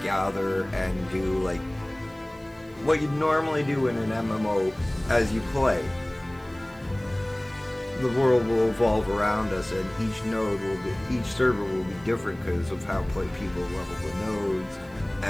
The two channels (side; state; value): right; noise; hiss, 29 dB below the sound